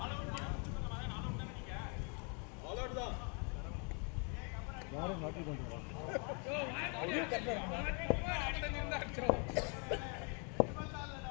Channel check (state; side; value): quieter; right; 36.6 dB